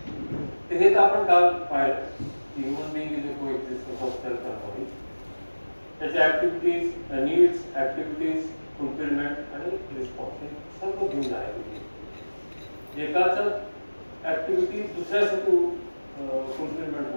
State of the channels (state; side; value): inverted; both; correlation -1.00